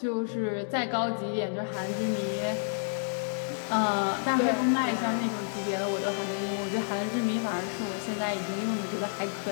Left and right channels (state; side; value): silent; right; digital silence